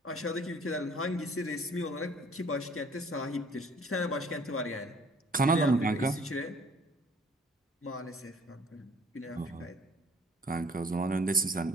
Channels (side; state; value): both; normal; correlation 0.55